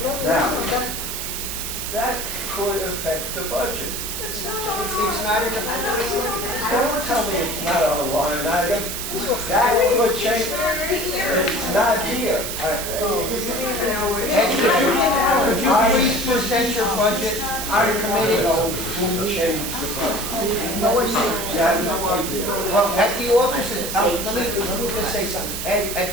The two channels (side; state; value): right; noise; hiss, 5 dB below the sound